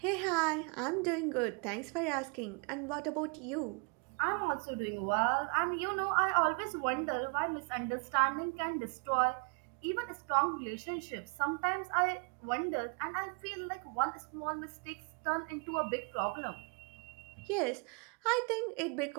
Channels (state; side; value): quieter; left; 35.3 dB